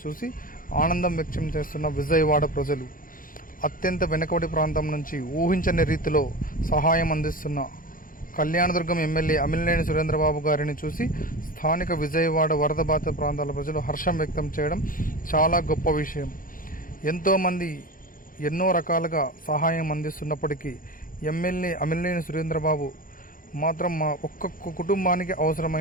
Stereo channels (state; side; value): late; right; 0.40 ms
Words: చూసి ఆనందం వ్యక్తం చేస్తున్న విజయవాడ ప్రజలు. అత్యంత వెనుకబడి ప్రాంతం నుంచి ఊహించని రీతిలో సహాయం అందిస్తున్న కళ్యాణదుర్గం ఎమ్మెల్యే అమిలనేని సురేంద్రబాబు గారిని చూసి స్థానిక విజయవాడ వరద బాధిత ప్రాంతాల ప్రజలు హర్షం వ్యక్తం చేయడం చాలా గొప్ప విషయం. ఎంతోమంది ఎన్నో రకాలుగా సహాయం అందిస్తున్నప్పటికీ ఎమ్మెల్యే అమిలనేని సురేంద్రబాబు మాత్రం మా ఒక్కొక్క కుటుంబానికి